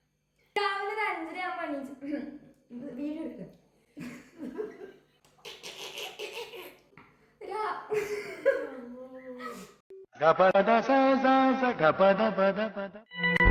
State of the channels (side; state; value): both; identical; correlation 1.00